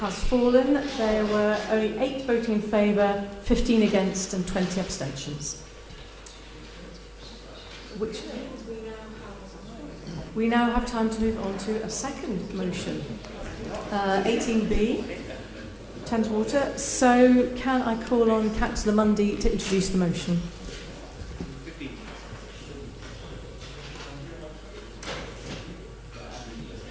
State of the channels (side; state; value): both; identical; correlation 1.00